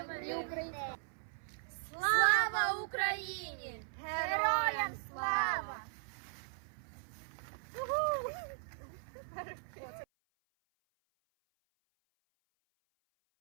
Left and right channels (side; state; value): left; silent; 52 dB below the other